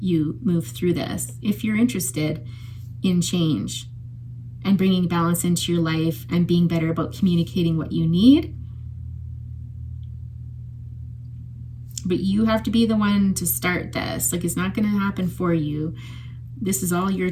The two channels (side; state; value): both; identical; correlation 1.00